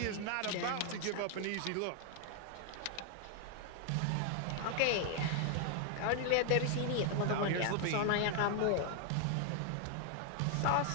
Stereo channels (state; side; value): different; both; correlation 0.00